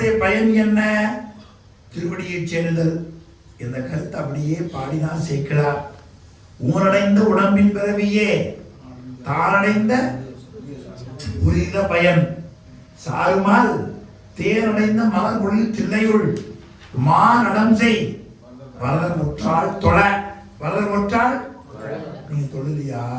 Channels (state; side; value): identical; both; correlation 1.00